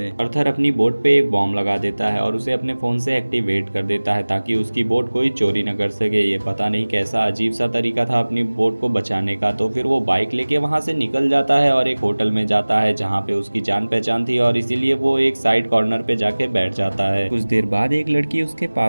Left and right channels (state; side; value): inverted; both; correlation -1.00